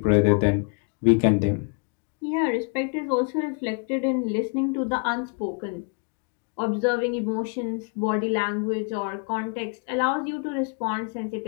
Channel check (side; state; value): right; quieter; 37.3 dB